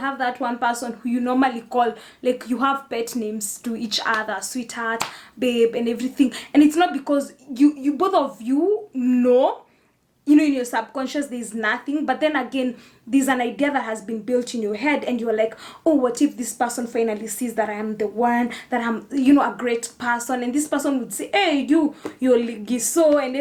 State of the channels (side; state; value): both; identical; correlation 1.00